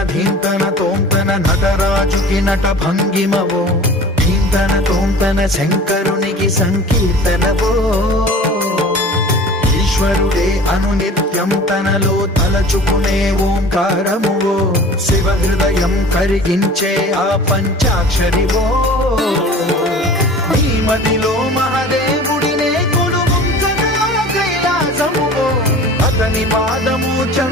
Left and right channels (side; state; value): both; normal; correlation 0.42